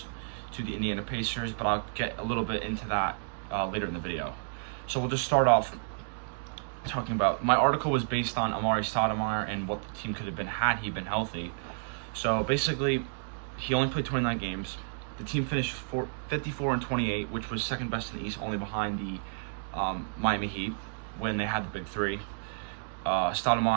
to the Indiana Pacers, but I'll get a little bit into that later in the video. So we'll just start off talking about, my article was based on Amari Stoudemire and what the team could have been had he been healthy. So basically, he only played 29 games. The team finished 54-28, which was second best in the East, only behind the Miami Heat when they had the big three.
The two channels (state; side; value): silent; left; digital silence